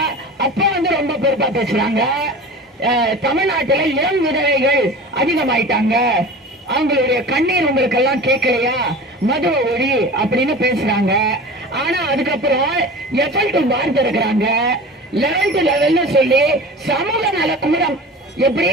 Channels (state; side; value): normal; both; correlation 0.36